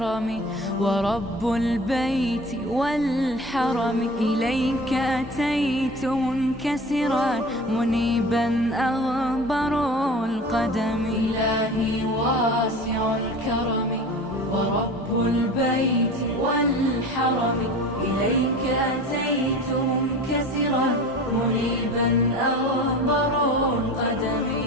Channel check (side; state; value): both; normal; correlation 0.37